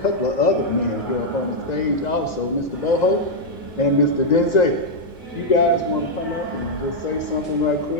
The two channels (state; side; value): late; right; 2.0 ms